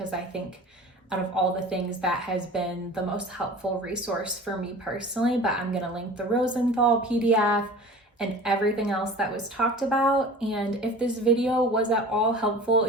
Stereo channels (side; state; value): both; normal; correlation 0.40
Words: I think out of all the things, that has been the most helpful resource for me personally. But I'm gonna link the Rosenthal PDF and everything else that was talked about. And if this video was at all helpful